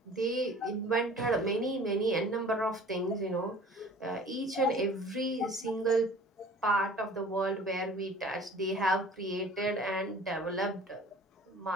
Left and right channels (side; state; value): both; normal; correlation 0.47